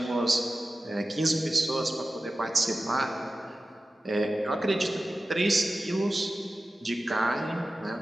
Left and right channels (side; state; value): both; normal; correlation 0.94